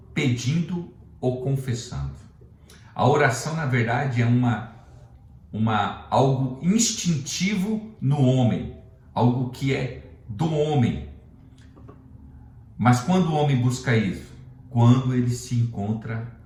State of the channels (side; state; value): both; identical; correlation 1.00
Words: pedindo ou confessando. A oração, na verdade, é algo instintivo no homem, algo que é do homem. Mas quando o homem busca isso? Quando ele se encontra